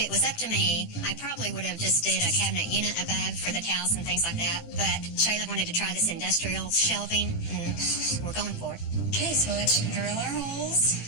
was up to me, I probably would have just did a cabinet unit above for the towels and things like that. But Shayla wanted to try this industrial shelving, and we're going for it. Okay, so let's drill our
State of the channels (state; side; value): late; right; 18 ms